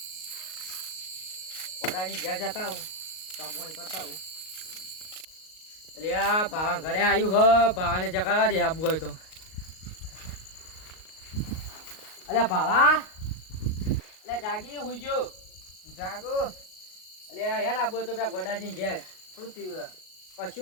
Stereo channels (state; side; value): late; right; 38 ms